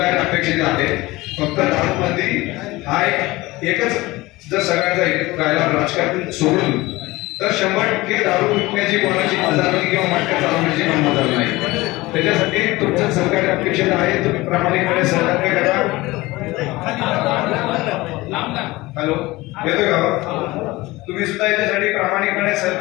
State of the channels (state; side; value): quieter; right; 20.3 dB